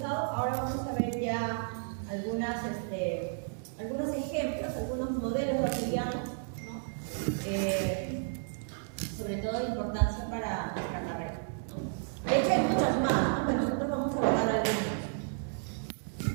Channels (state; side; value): silent; left; digital silence